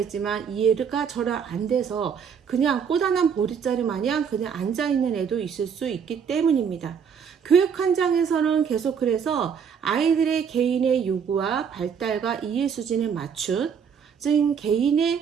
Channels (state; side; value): quieter; left; 7.0 dB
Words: 이해가 전혀 안 돼서 그냥 꼬다난 보릿자루 마냥 그냥 앉아있는 애도 있을 수 있기 때문입니다. 교육 현장에서는 계속 그래서 아이들의 개인의 요구와 발달과 이해 수준에 맞춘, 즉